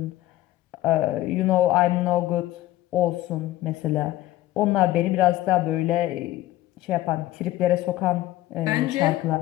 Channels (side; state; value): right; quieter; 15.6 dB